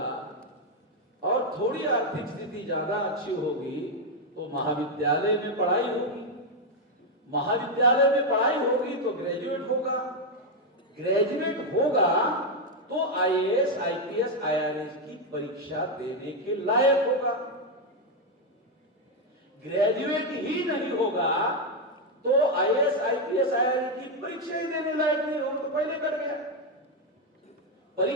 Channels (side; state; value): both; normal; correlation 0.03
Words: और थोड़ी आर्थिक स्थिति ज्यादा अच्छी होगी तो महाविद्यालय में पढ़ाई होगी। महाविद्यालय में पढ़ाई होगी तो ग्रेजुएट होगा तो आईएएस, आईपीएस, आईआरएस की परीक्षा देने के लायक होगा। ग्रेजुएट ही नहीं होगा तो आईएएस, आईपीएस, आईआरएस की परीक्षा ही देने लायक नहीं होगा, तो पहले कर गया।